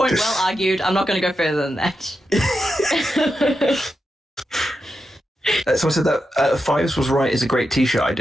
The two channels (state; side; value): normal; both; correlation 0.88